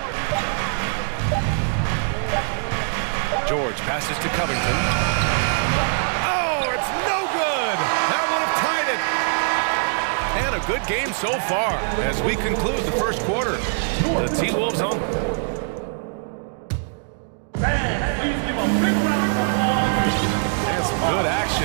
George passes to Covington. Oh, it's no good. That would have tied it. And a good game so far as we conclude the first quarter. The T-Wolves on. Fans, please give a big round of applause. And some good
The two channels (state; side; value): silent; left; digital silence